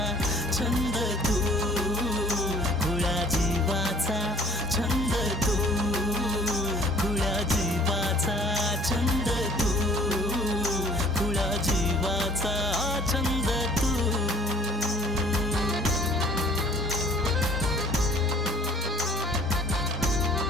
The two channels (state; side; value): normal; both; correlation 0.53